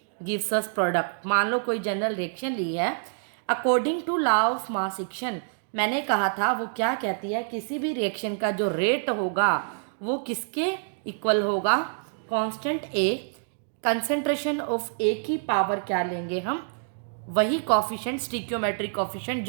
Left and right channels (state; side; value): silent; left; digital silence